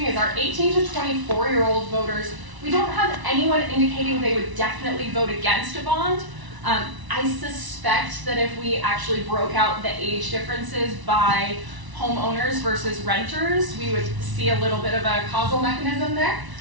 is our 18 to 24-year-old voters. We don't have anyone indicating they would definitely vote against a bond. I suspect that if we actually broke out the age differences by homeowners versus renters, we would see a little bit of a causal mechanism there.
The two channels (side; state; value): left; late; 1.0 ms